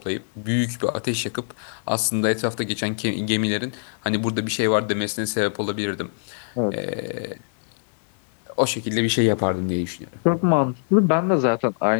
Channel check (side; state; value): right; silent; digital silence